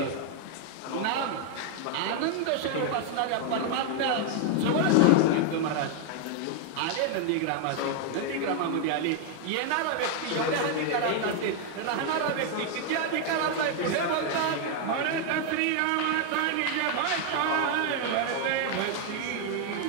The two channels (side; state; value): both; different; correlation 0.00